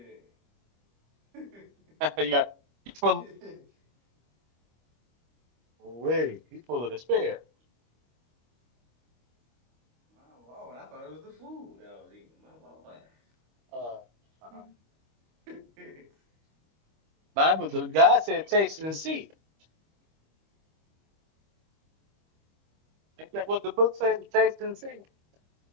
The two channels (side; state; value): left; late; 25 ms